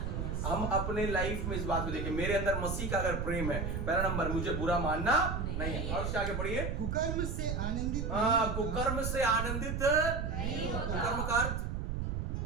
हम अपने लाइफ में इस बात को देखें, मेरे अंदर मसीह का अगर प्रेम है, पहला नंबर, मुझे बुरा मानना नहीं है। और उसके आगे पढ़िए, कुकर्म से आनंदित कुकर्म से आनंदित नहीं होता। कुकर्म का अर्थ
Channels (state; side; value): noise; right; rumble, 2 dB below the sound